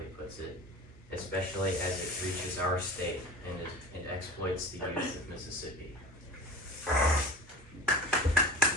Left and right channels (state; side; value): normal; both; correlation 0.36